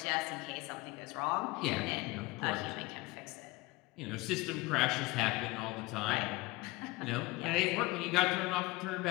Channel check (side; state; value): right; quieter; 21.6 dB